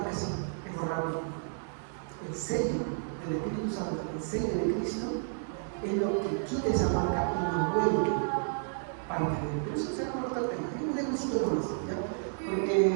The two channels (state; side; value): silent; left; digital silence